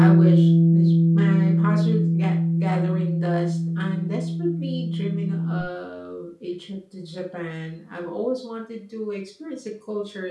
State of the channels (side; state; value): both; identical; correlation 1.00